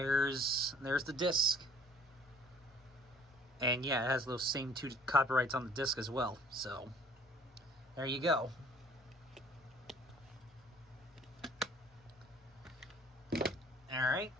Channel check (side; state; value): both; normal; correlation 0.56